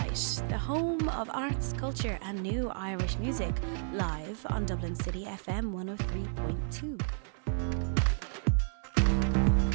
the home of arts, culture and new Irish music, live on Dublin City FM 103.2.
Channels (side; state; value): left; silent; 57 dB below the other